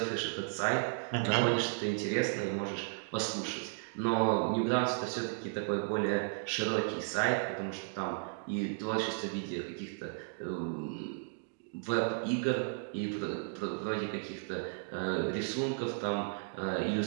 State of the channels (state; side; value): silent; left; digital silence